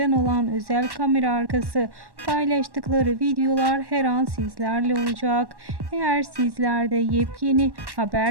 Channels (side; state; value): left; late; 1.1 ms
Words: olan özel kamera arkası paylaştıkları videolar her an sizlerle olacak. Eğer sizler de yepyeni